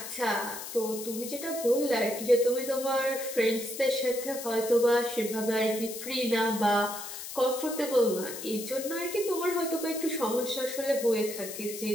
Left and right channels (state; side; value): noise; left; hiss, 9 dB below the sound